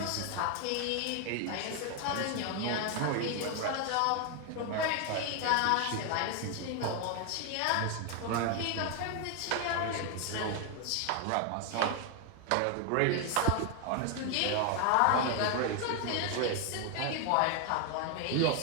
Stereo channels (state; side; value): different; both; correlation 0.01